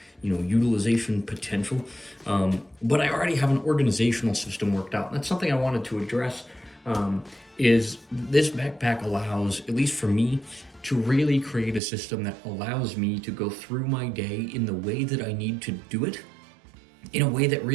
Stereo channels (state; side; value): drops out; left; at 11.8 s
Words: utilization potential. But I already have an organizational system worked out. And that's something I wanted to address. Is this backpack allows, at least for me, to really create a system that allows me to go through my day in the way that I need to do it, in a way that